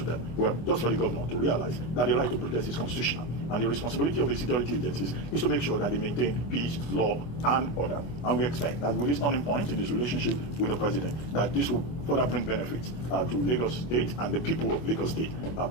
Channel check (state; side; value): late; right; 24 ms